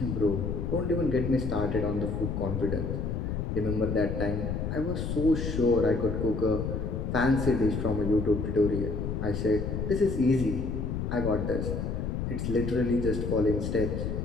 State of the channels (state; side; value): noise; left; rumble, 2 dB below the sound